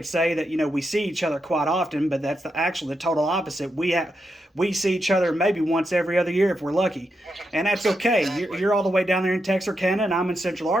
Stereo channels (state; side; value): normal; both; correlation 0.85